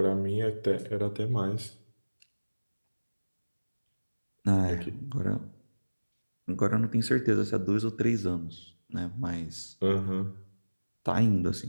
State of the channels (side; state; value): both; inverted; correlation -1.00